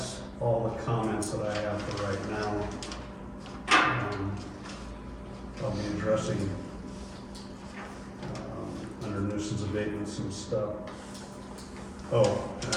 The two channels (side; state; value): both; identical; correlation 1.00